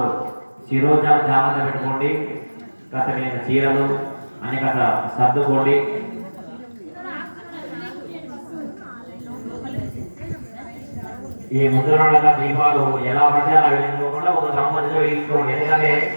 శిరోజాలు జాగ్రత్త పెట్టుకోండి. కాస్త మీరు చీరలు అన్ని కాస్త సర్దుకోండి. ఈ ముద్రణ దీపాలు ఎలా పడితే అలా వెలిగించుకోకుండా ఒక సంబంధించి వెలిగించుకోండి. ఎందుకంటే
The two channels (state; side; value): inverted; both; correlation -1.00